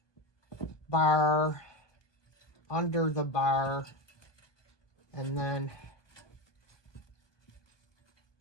bar, under the bar, and then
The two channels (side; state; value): right; late; 1.2 ms